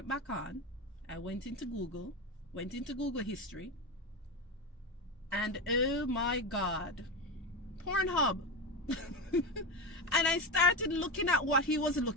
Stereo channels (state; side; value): normal; both; correlation 0.18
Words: back on. I went into Google history. And oh my God, Pornhub. And I started looking at what he was